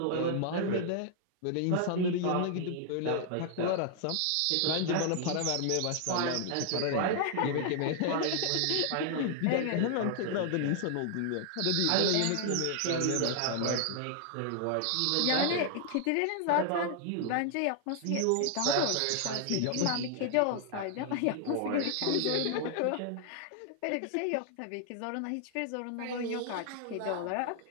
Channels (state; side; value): different; both; correlation 0.00